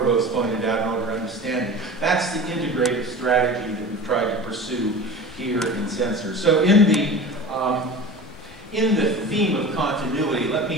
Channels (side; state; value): both; normal; correlation 0.35